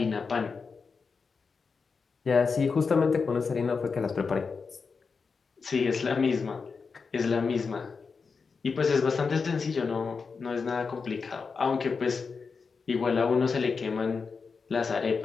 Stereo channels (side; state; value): right; quieter; 5.1 dB